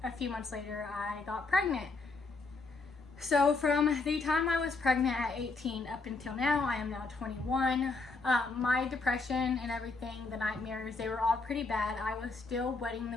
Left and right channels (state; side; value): quieter; right; 3.8 dB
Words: a few months later I got pregnant. So from the time I was pregnant at 18 up until now, I am now 21. My depression and everything, the nightmares, they were all pretty bad. I was still wetting